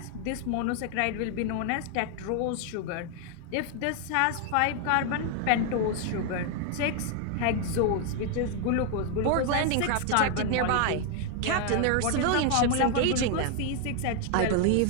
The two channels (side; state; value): both; different; correlation 0.00